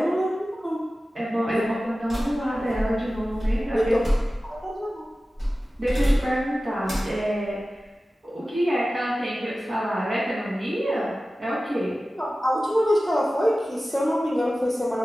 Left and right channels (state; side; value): normal; both; correlation 0.96